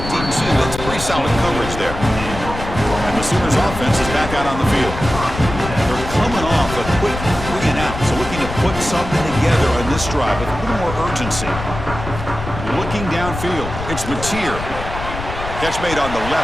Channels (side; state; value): left; noise; rumble, 8 dB below the sound